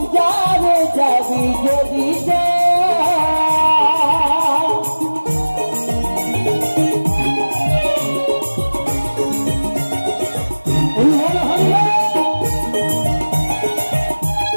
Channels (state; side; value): inverted; both; correlation -1.00